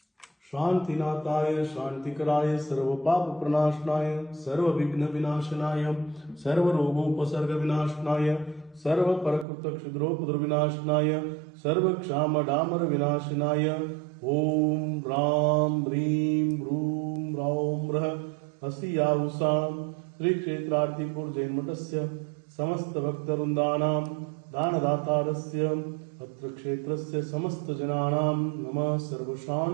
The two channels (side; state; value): left; drops out; at 9.5 s